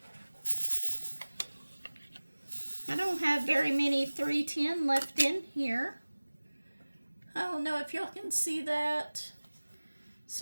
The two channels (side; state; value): both; inverted; correlation -1.00